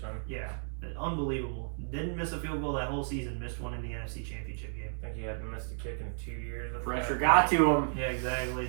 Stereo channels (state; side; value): silent; left; 56 dB below the other